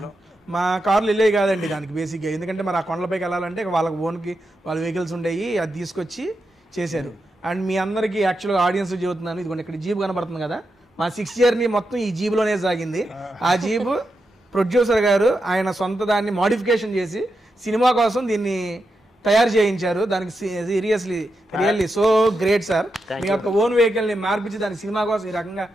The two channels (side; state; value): both; normal; correlation 0.87